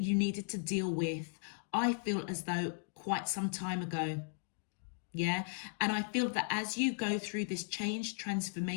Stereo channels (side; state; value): right; silent; digital silence